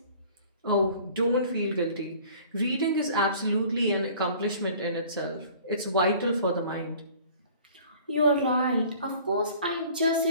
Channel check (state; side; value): inverted; both; correlation -0.49